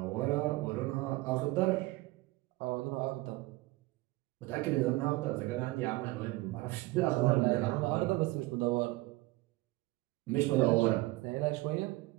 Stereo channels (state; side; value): quieter; left; 20.5 dB